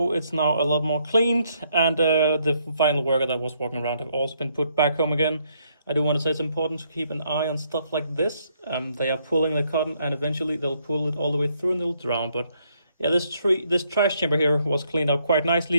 It's now a lot more cleaned, and the final worker that was walking around have also been put back home again. I do want to say it's important to keep an eye on stuff like this. They are pulling the cotton, and eventually they'll pull it all the way through and they'll drown. But yeah, this trash chamber here was cleaned up quite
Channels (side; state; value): both; inverted; correlation -0.72